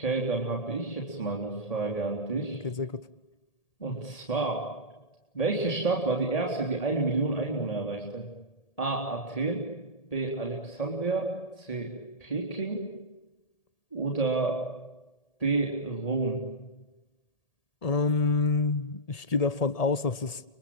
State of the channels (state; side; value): late; right; 1.8 ms